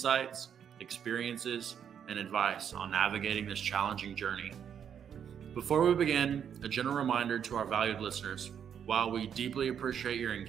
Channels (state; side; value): quieter; left; 8.3 dB